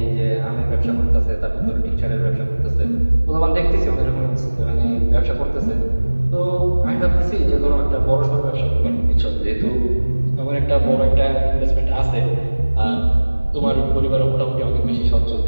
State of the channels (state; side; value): inverted; both; correlation -1.00